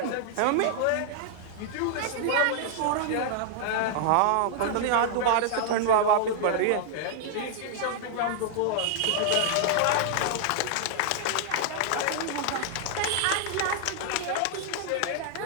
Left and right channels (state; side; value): different; both; correlation -0.01